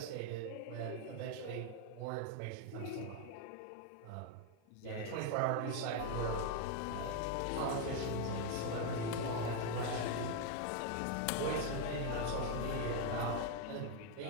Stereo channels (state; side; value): different; both; correlation 0.01